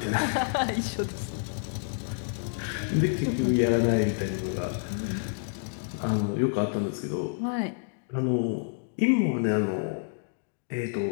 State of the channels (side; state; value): right; silent; digital silence